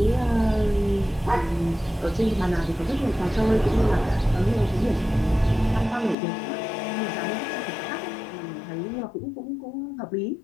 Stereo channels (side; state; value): right; drops out; at 6.2 s